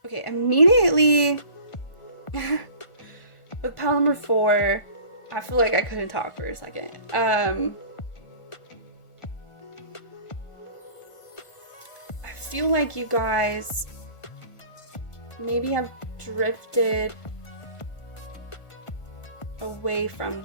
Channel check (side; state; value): right; late; 1.4 ms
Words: okay, immediately with pile number 4, I feel like I couldn't talk for a second. I feel like you guys maybe have drifted away from